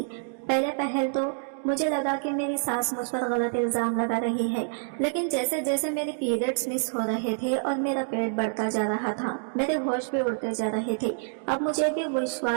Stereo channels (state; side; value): silent; left; digital silence